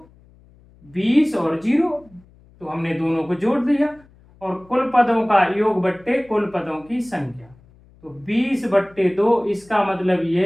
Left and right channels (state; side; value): noise; left; hum, 28 dB below the sound